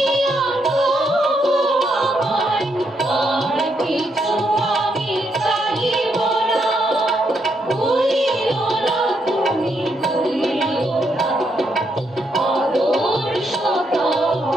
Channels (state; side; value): normal; both; correlation 0.77